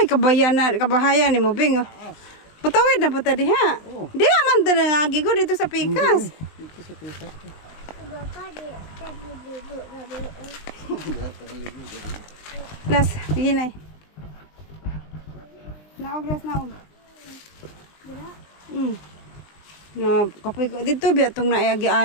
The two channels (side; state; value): right; late; 20 ms